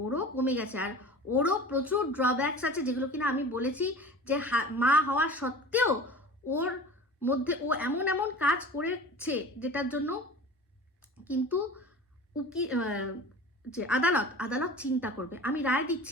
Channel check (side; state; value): both; normal; correlation 0.38